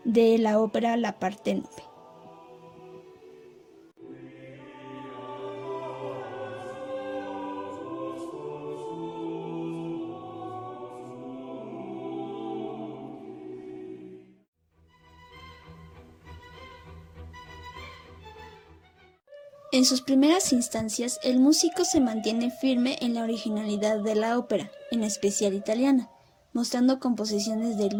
de la ópera La Parténope. En sus primeras instancias, el músico se mantiene firme en la originalidad de la ópera, en especial italiana, mostrando composiciones de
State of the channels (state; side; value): identical; both; correlation 1.00